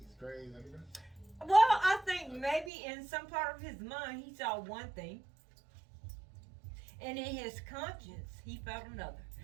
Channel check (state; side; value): drops out; left; at 2.7 s